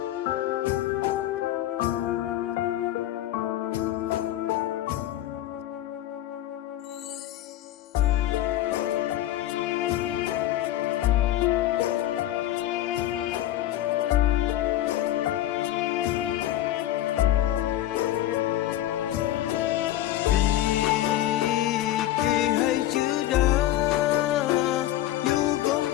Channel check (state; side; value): quieter; right; 13.6 dB